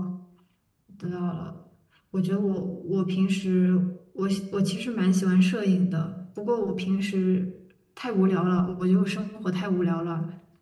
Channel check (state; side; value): identical; both; correlation 1.00